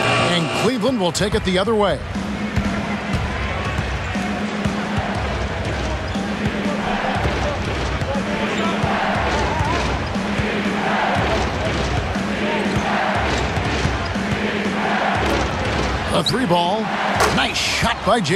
And Cleveland will take it the other way. A 3-ball. Nice shot by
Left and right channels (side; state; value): both; identical; correlation 1.00